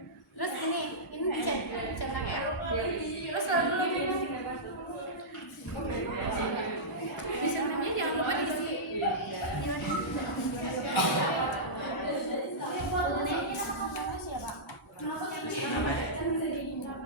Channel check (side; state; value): both; normal; correlation -0.14